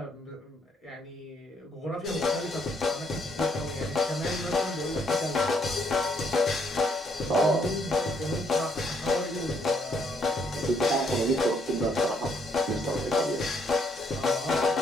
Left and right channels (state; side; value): normal; both; correlation 0.71